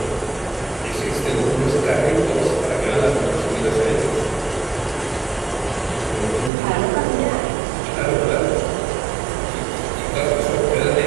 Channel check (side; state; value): left; drops out; at 6.5 s